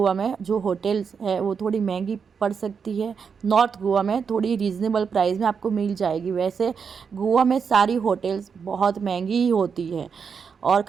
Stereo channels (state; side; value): quieter; left; 6.2 dB